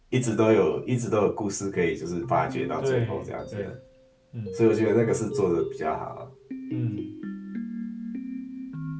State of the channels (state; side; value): identical; both; correlation 1.00